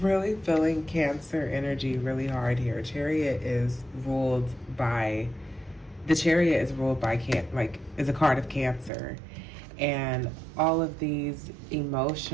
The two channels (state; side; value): drops out; left; at 8.9 s